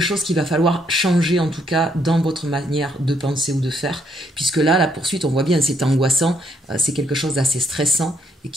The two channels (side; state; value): both; normal; correlation 0.72